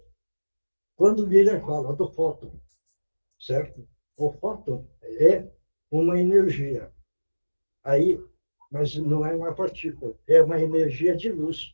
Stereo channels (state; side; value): inverted; both; correlation -1.00